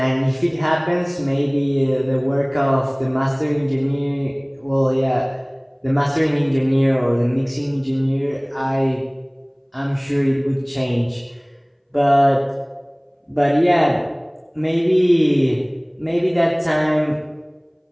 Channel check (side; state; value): both; identical; correlation 1.00